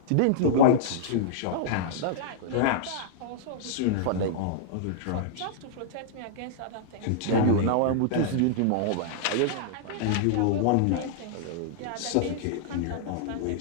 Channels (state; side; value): different; both; correlation -0.02